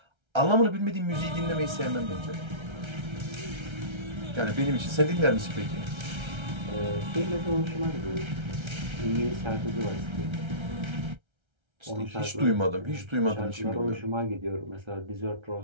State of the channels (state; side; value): late; left; 1.3 ms